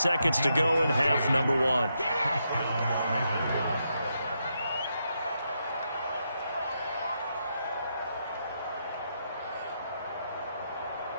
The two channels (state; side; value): inverted; both; correlation -0.81